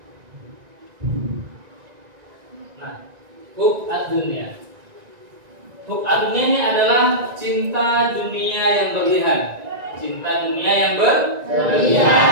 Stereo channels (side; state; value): left; late; 1.9 ms